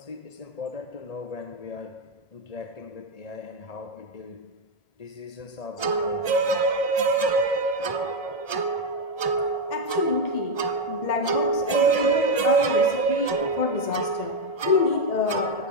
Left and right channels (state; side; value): late; right; 1.3 ms